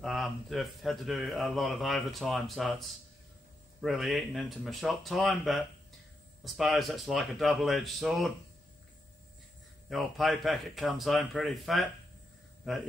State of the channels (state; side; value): normal; both; correlation 0.83